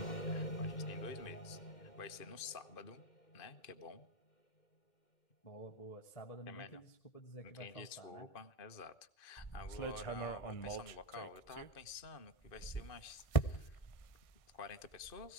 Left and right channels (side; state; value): right; late; 2.5 ms